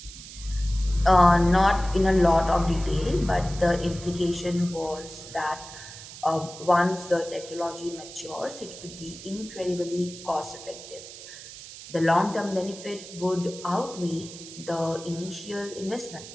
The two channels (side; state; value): right; noise; hiss, 14 dB below the sound